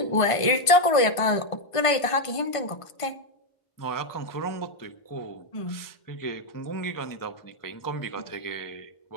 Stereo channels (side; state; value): right; late; 1.5 ms